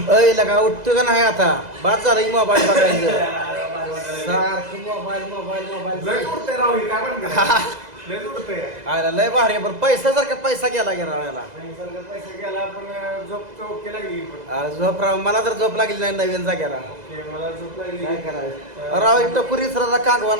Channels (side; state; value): left; late; 2.0 ms